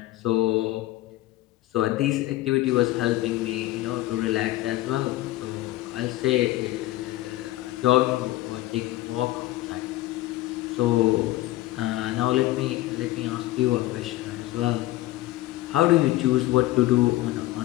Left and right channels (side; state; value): right; quieter; 16.8 dB